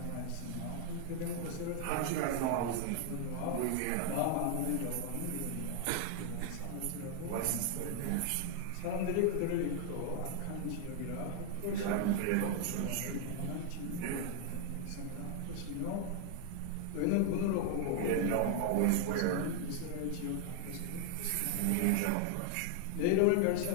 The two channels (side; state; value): both; different; correlation 0.00